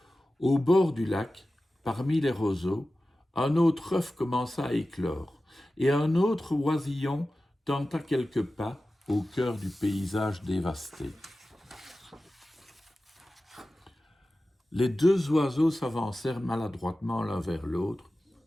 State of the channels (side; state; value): both; normal; correlation 0.95